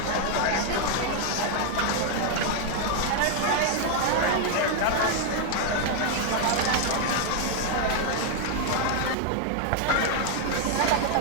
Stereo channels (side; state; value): both; different; correlation 0.00